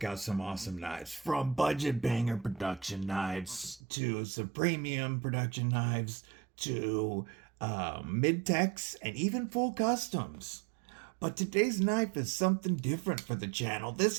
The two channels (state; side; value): drops out; left; at 3.8 s